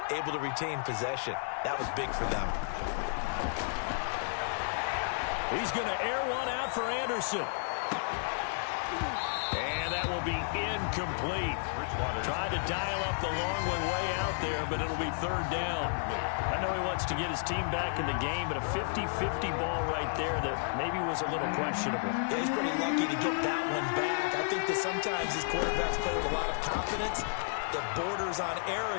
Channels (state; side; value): silent; right; digital silence